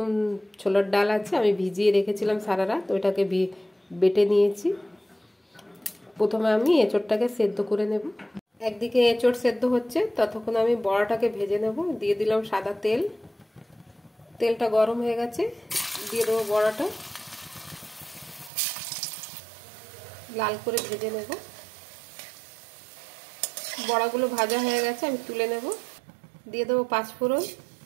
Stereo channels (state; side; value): drops out; left; at 18.5 s